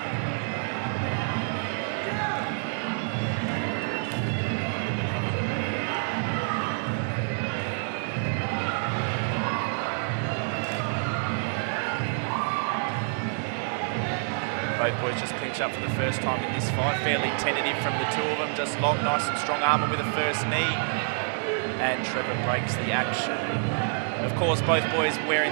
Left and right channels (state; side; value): silent; left; 60 dB below the other